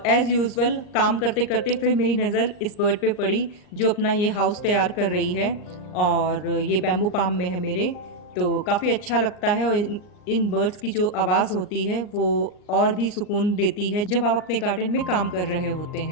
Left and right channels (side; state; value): right; late; 39 ms